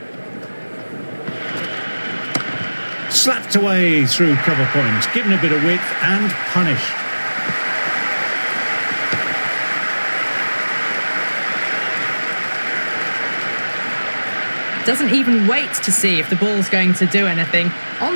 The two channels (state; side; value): inverted; both; correlation -1.00